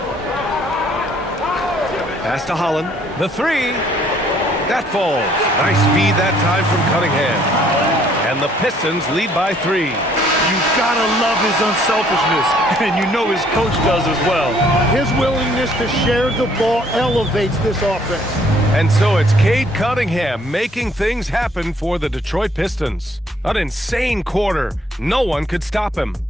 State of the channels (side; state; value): both; normal; correlation 0.63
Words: Pass to Holland. The 3. That falls. Nice feed that time from Cunningham. And the Pistons lead by 3. You gotta love his unselfishness, and you know his coach does as well. His willingness to share the ball elevates this offense. And so it's Cade Cunningham making things happen for the Detroit Pistons. An insane quarter. No one could stop him.